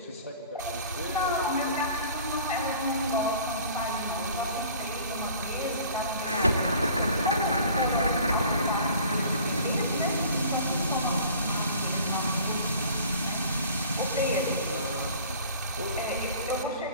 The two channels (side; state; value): both; inverted; correlation -0.48